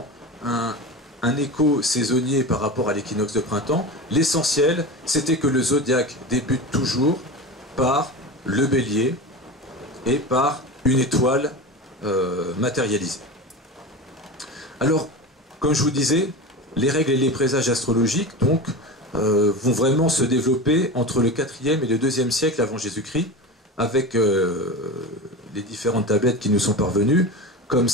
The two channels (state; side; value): normal; both; correlation 0.27